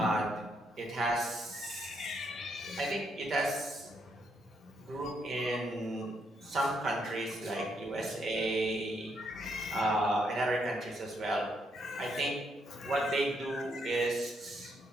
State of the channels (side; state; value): both; normal; correlation 0.75